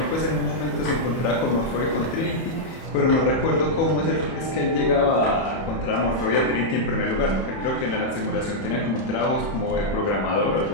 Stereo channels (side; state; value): right; late; 31 ms